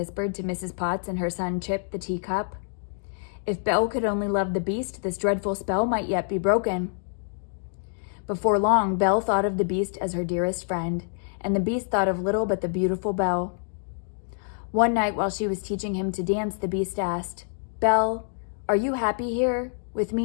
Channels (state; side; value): silent; right; digital silence